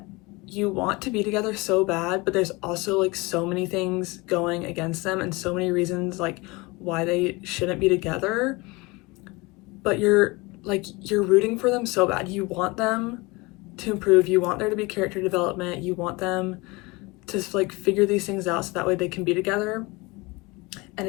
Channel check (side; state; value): right; quieter; 24.5 dB